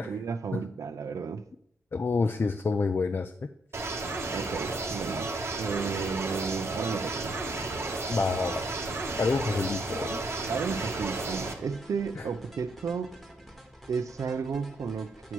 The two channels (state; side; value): normal; both; correlation 0.73